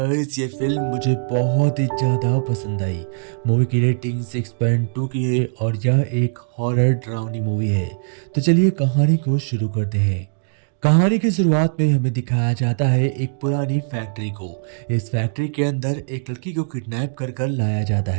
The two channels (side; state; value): left; silent; digital silence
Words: ये film मुझे बहुत ही ज़्यादा पसंद आई। मूवी की रेटिंग 6.2 की है और यह एक हॉरर डरावनी मूवी है। तो चलिए कहानी को शुरू करते हैं। कहानी की शुरुआत में हमें दिखाया जाता है एक पुरानी फैक्ट्री को। इस फैक्ट्री के अंदर एक लड़की को किडनैप कर कर लाया जाता